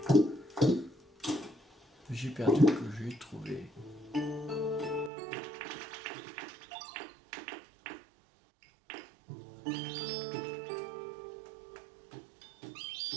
Le jeu perdu que j'ai trouvé.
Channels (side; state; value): left; drops out; at 5.1 s